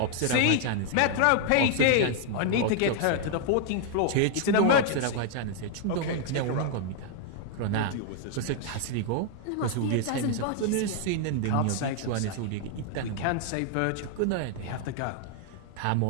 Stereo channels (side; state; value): both; different; correlation 0.00